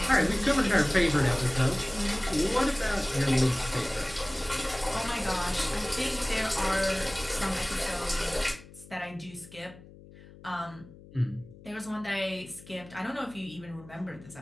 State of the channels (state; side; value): noise; left; hum, 20 dB below the sound